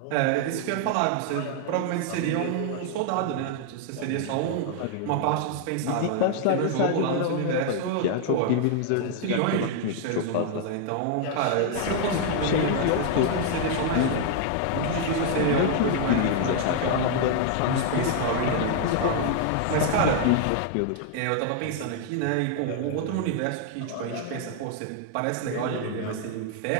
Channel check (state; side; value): different; both; correlation 0.00